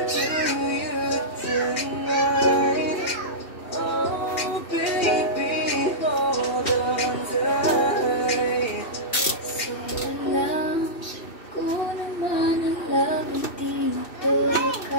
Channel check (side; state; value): right; late; 2.6 ms